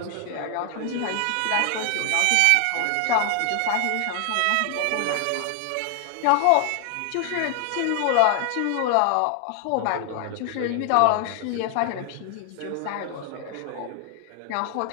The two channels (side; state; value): both; different; correlation 0.00